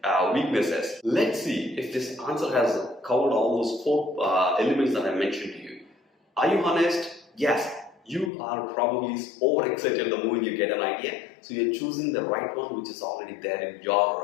weaknesses. Let's see if this answer has covered all those 4 elements that I mentioned to you. Are you honest? Yes. You are probably overexcited the moment you get an idea, so you're choosing the right one which is already there in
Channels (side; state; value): right; drops out; at 8.3 s